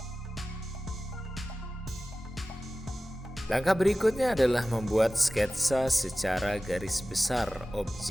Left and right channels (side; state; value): both; normal; correlation 0.96